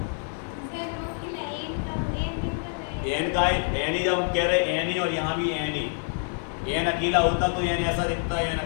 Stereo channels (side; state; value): right; silent; 56 dB below the other